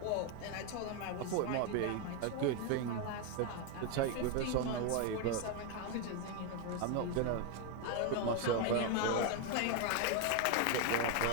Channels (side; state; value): both; different; correlation 0.01